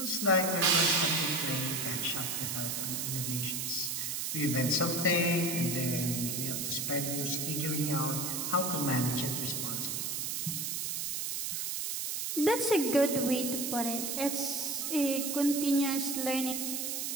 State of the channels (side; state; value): right; noise; hiss, 2 dB below the sound